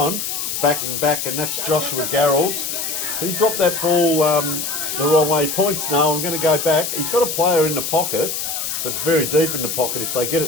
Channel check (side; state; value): left; noise; hiss, 3 dB below the sound